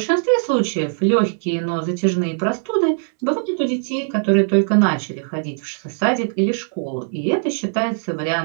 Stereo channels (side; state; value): left; silent; 65 dB below the other